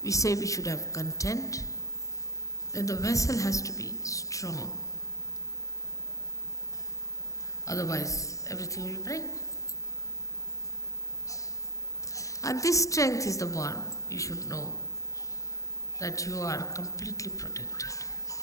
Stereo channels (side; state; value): right; late; 0.16 ms